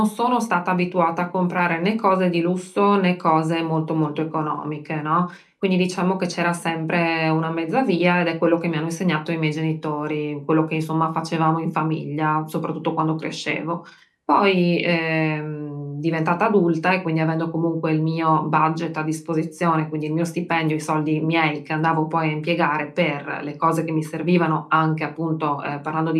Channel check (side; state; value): both; identical; correlation 1.00